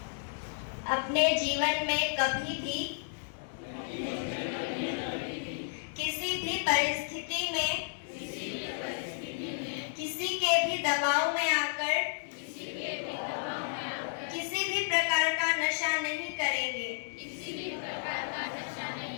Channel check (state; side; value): silent; right; 56 dB below the other